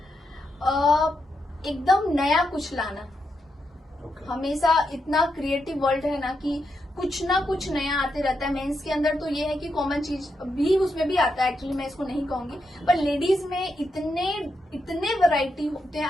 एकदम नया कुछ लाना। Okay. हमेशा इतना क्रिएटिव वर्ल्ड है ना कि कुछ ना कुछ नया आते रहता है। मेंस के अंदर तो ये है कि कॉमन चीज भी उसमें भी आता है, एक्चुअली मैं इसको नहीं कहूंगी, पर लेडीज में इतने वैरायटी होते हैं,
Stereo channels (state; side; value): normal; both; correlation 0.83